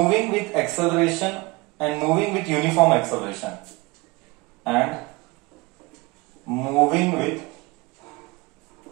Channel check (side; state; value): left; quieter; 24.0 dB